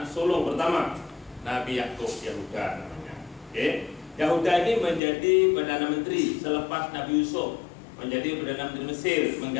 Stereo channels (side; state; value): right; drops out; at 5.0 s